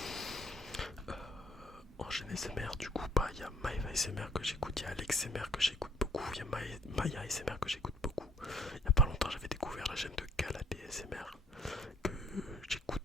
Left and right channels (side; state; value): both; normal; correlation 0.62